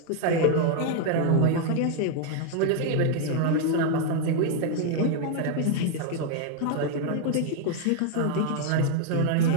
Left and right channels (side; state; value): both; different; correlation 0.00